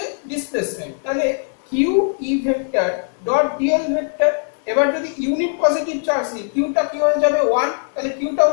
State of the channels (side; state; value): right; silent; digital silence